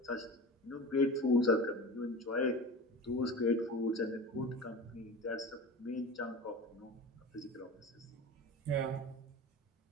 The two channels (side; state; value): both; normal; correlation 0.32